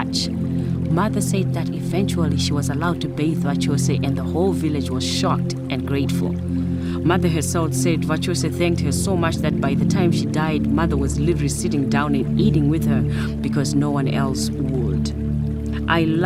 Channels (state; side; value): identical; both; correlation 1.00